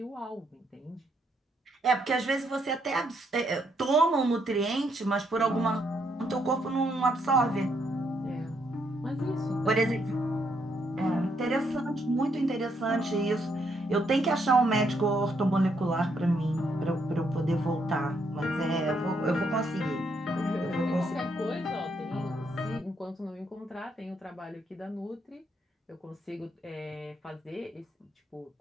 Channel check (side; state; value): both; normal; correlation 0.74